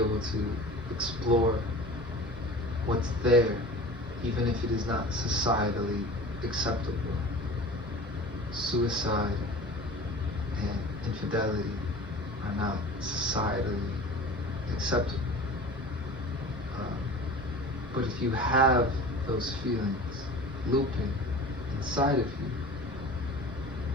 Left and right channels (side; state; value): both; normal; correlation 0.38